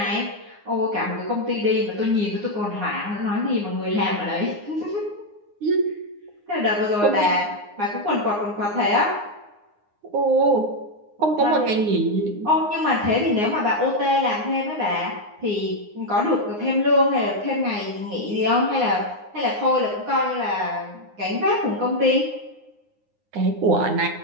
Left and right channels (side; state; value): left; late; 9.7 ms